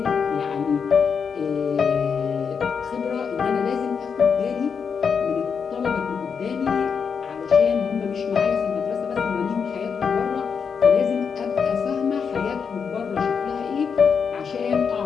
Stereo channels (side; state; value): right; quieter; 6.3 dB